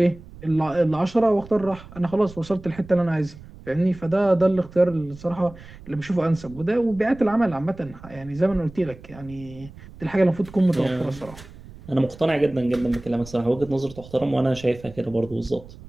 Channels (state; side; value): noise; right; rumble, 18 dB below the sound